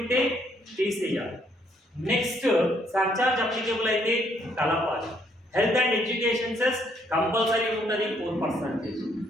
తీసేయాలి. నెక్స్ట్ సర్చార్జ్ అప్లికేబుల్ అయితే కలపాలి. Health and education cess compulsory ఉంటుంది 4%.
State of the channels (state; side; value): normal; both; correlation 0.69